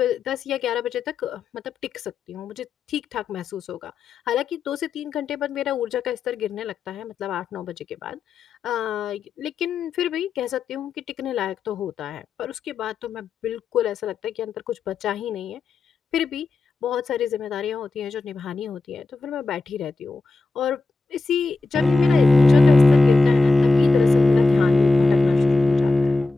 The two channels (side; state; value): right; quieter; 3.5 dB